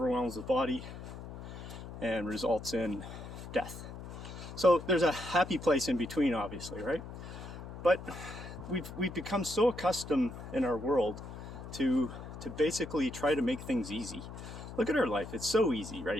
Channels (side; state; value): left; noise; hum, 11 dB below the sound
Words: the body and results in death. So there's a happy place in between, obviously, right? But we've become so accustomed in our world to basically try to make things easy. Look at our life. It's so easy